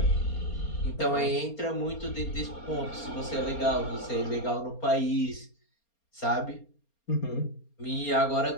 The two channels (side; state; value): right; late; 4.3 ms